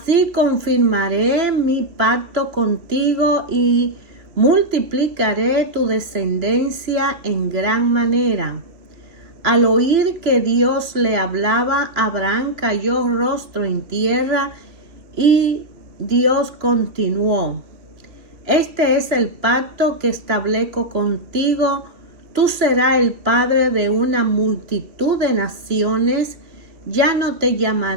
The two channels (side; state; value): left; late; 3.0 ms